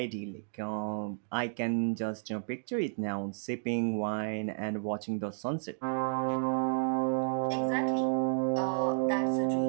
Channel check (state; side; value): silent; left; digital silence